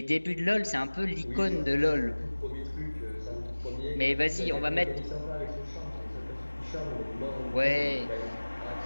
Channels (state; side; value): inverted; both; correlation -1.00